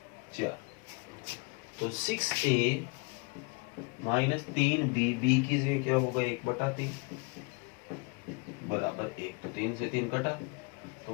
4। तो 6a माइनस 3b, b की जगह क्या होगा 1/3 बराबर 1, तो 3 से 3 कटा, तो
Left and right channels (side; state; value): right; quieter; 31.7 dB